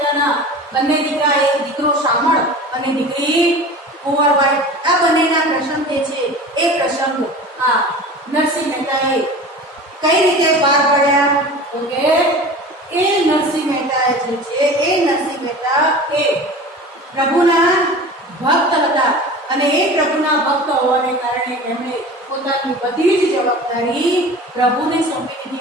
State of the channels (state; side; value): normal; both; correlation 0.37